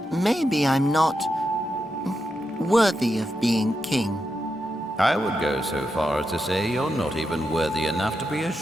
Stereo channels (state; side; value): normal; both; correlation 0.86